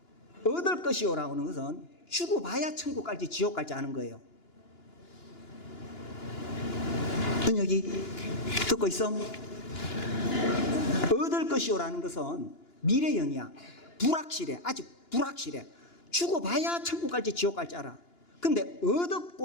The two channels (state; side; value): late; right; 2.9 ms